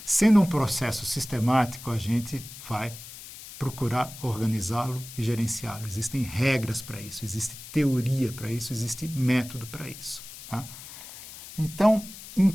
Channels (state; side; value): noise; left; hiss, 14 dB below the sound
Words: Sendo um processo sistemático, a gente vai procurar organizá-lo e gerenciá-lo. Existem regras para isso, existe teoria para isso, existe método para isso. Tá? Então,